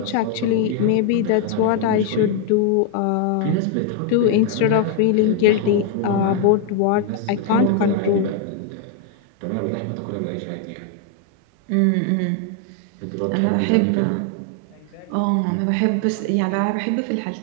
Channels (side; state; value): both; different; correlation 0.01